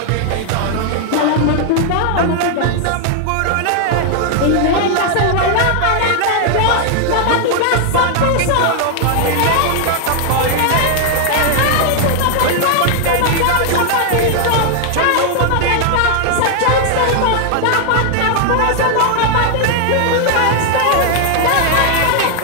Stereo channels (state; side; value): different; both; correlation 0.00